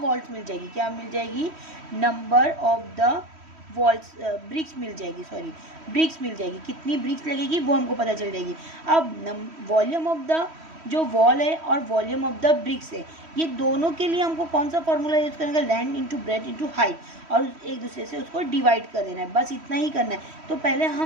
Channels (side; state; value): left; late; 3.1 ms